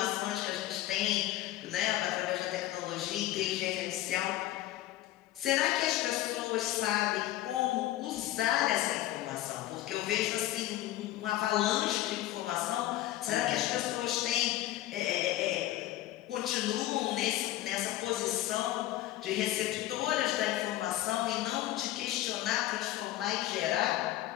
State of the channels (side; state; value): right; quieter; 14.9 dB